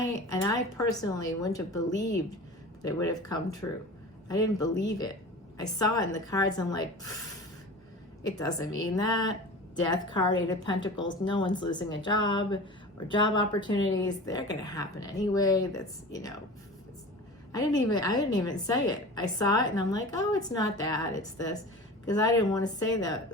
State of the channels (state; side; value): normal; both; correlation 0.36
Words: personally wouldn't have believed that it would have come true. I didn't believe it. I saw it in the cards. I'm like, it doesn't mean that. Death card, 8 of Pentacles. No one's losing a job or job opportunities. They're going to happen anyway. That's, you know, I didn't even say it. I saw it and I'm like, oh, it's not that. It's this. Because I didn't want to say